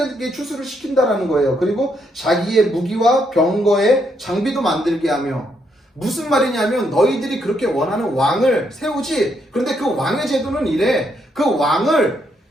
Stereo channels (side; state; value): both; normal; correlation 0.76